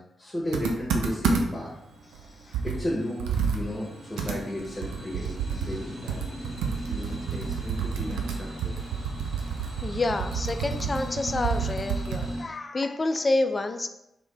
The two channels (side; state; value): both; normal; correlation 0.77